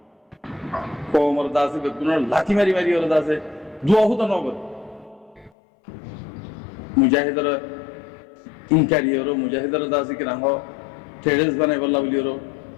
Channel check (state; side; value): drops out; right; at 5.5 s